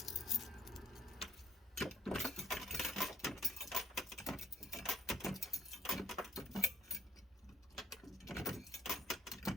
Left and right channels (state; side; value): normal; both; correlation 0.67